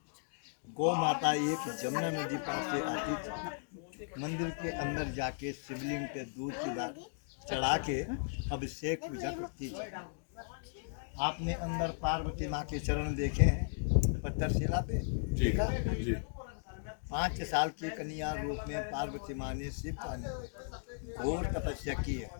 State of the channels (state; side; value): silent; right; digital silence